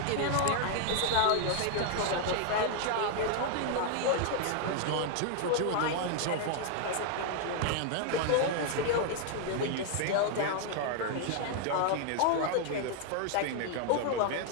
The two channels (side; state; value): both; different; correlation 0.00